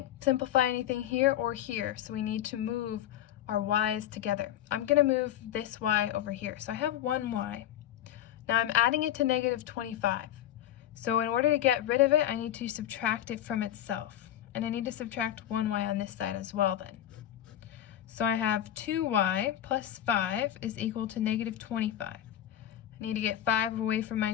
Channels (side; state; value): right; quieter; 11.8 dB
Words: simplify anything here or here, so we need to move our y's together. I'm going to move this y over here. So I have 1y. Now I'm adding it to negative 25. So in order to get rid of it, I need to subtract it from itself. And I need to subtract 1y on this side as well then. So I have 2y plus 5 is equal to negative 25. I need to get 5 away from